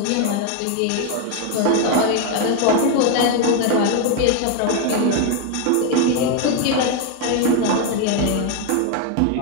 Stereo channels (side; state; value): both; different; correlation 0.01